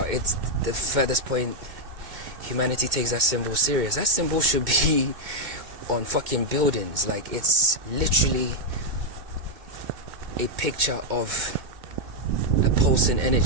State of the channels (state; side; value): late; left; 2.1 ms